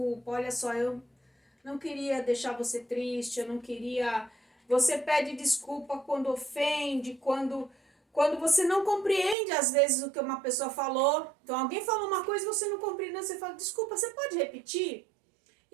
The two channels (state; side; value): drops out; left; at 9.3 s